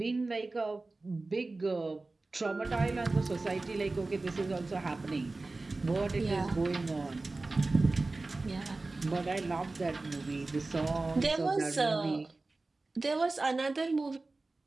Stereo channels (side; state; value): left; quieter; 3.3 dB